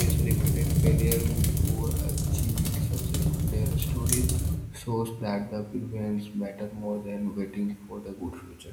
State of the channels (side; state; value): both; identical; correlation 1.00